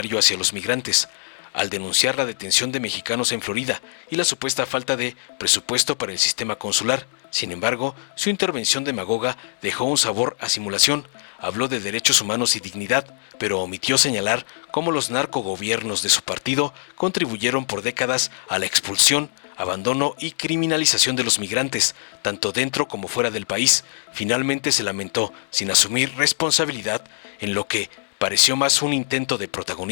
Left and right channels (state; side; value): silent; right; digital silence